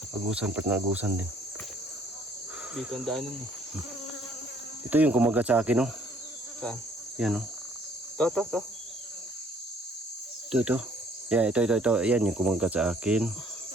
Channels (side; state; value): both; normal; correlation 0.61